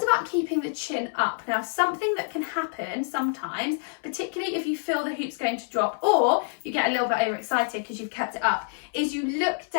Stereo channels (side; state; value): right; silent; 60 dB below the other